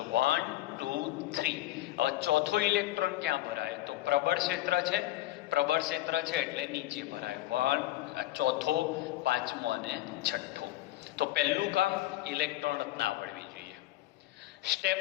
1 2 3. હવે ચોથો ઇલેક્ટ્રોન ક્યાં ભરાય? તો પ્રબળ ક્ષેત્ર છે. પ્રબળ ક્ષેત્ર છે એટલે નીચે ભરાય. 1 ચોથો, પાંચમો અને છઠ્ઠો. તો પહેલું કામ ઇલેક્ટ્રોન રચના આવડવી જોઈએ. સ્ટેપ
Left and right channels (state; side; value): quieter; right; 16.0 dB